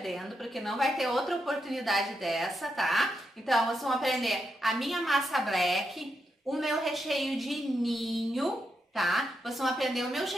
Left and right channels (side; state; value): both; normal; correlation 0.84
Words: porque não vai ter outra oportunidade dessa, tá? Então, vocês vão aprender a minha massa black, o meu recheio de ninho, tá? Vocês vão aprender o meu